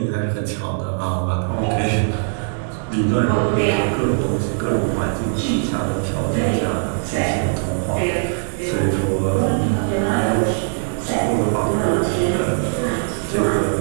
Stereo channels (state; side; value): silent; left; digital silence